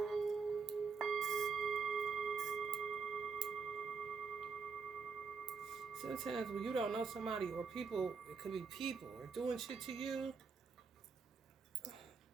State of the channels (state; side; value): quieter; left; 5.2 dB